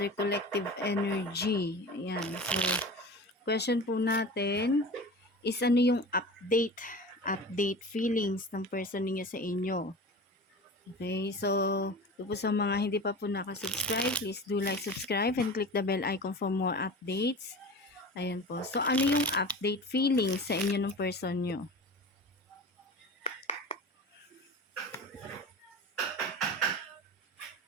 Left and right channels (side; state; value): both; normal; correlation 0.34